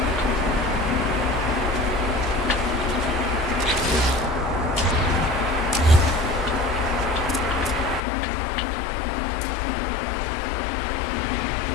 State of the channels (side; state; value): right; drops out; at 8.0 s